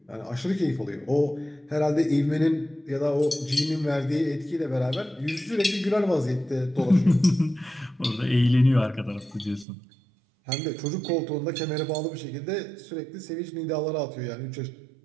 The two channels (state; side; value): drops out; left; at 9.7 s